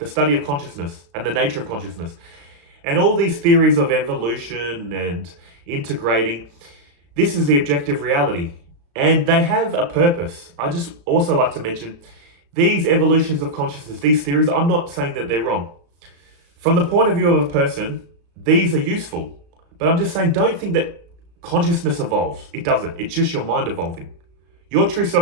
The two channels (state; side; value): late; left; 35 ms